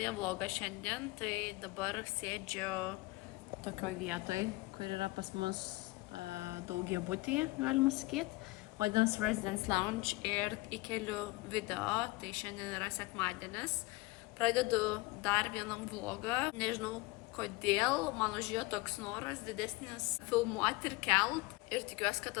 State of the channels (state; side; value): quieter; right; 22.4 dB